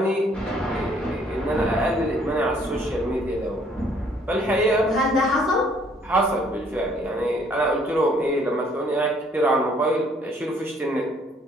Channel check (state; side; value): normal; both; correlation 0.63